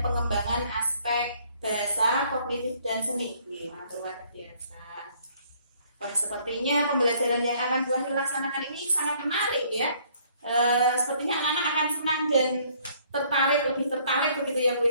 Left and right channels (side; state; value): both; inverted; correlation -0.62